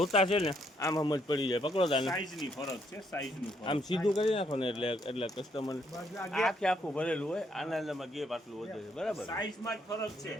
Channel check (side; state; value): both; normal; correlation 0.72